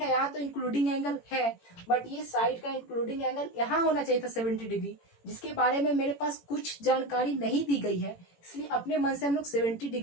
है, यहाँ तो इंक्लूडिंग एंगल है, बट ये साइड का इंक्लूडिंग एंगल यहाँ होना चाहिए था 70 डिग्री, जिसके बारे में मेरे पास कुछ जानकारी नहीं दी गई है, इसलिए अपने मन से हम लोग 70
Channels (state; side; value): late; right; 18 ms